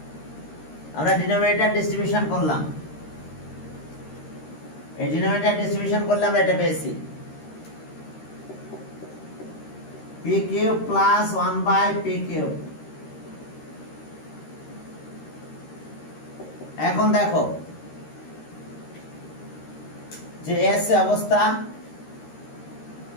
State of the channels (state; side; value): late; right; 13 ms